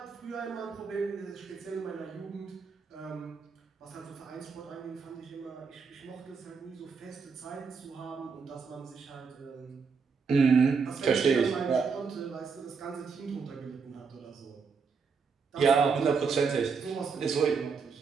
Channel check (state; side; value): quieter; left; 5.4 dB